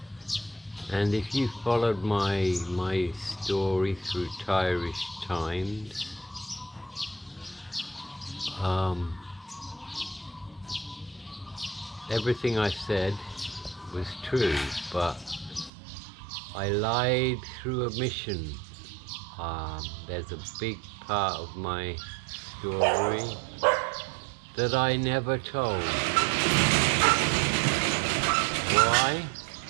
and if you followed my story through Thai-ish times, everything I said was true, but I lied through omission. There's a big part of my story that I never told. Why?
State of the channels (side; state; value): left; drops out; at 15.7 s